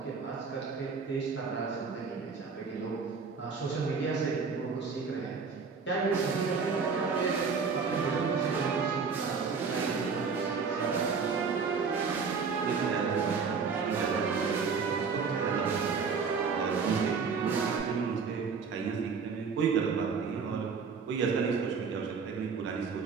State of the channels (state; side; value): quieter; left; 5.3 dB